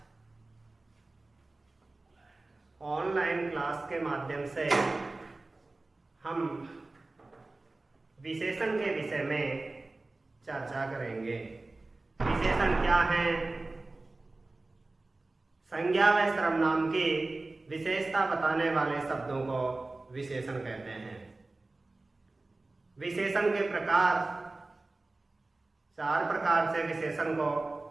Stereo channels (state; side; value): quieter; left; 3.1 dB